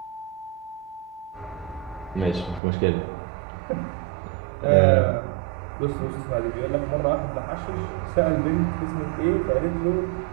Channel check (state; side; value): drops out; left; at 2.6 s